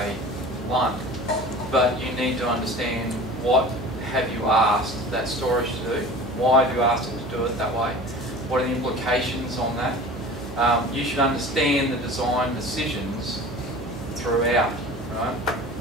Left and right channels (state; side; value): noise; right; hum, 13 dB below the sound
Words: one. But you need to understand what have you asked that storage to do, why have you asked it to do it that way, what are the implications on that. You should understand the design decisions throughout, right?